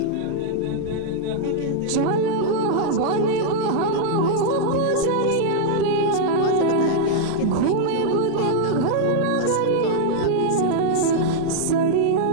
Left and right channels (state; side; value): different; both; correlation -0.01